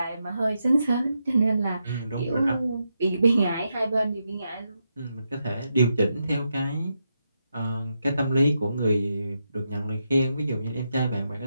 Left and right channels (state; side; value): inverted; both; correlation -0.84